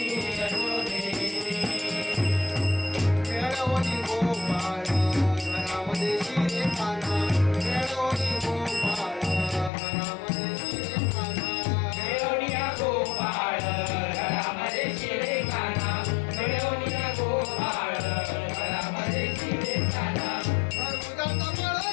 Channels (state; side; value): drops out; right; at 9.7 s